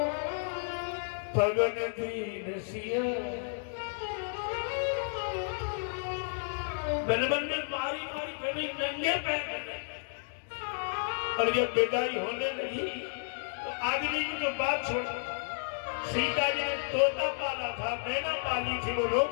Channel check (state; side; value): silent; right; digital silence